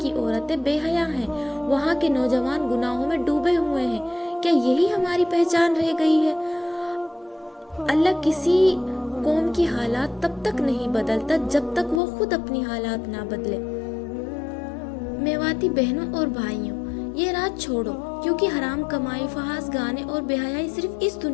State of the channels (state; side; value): drops out; right; at 12.0 s